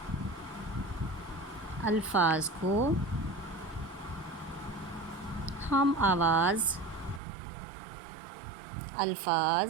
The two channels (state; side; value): drops out; left; at 7.2 s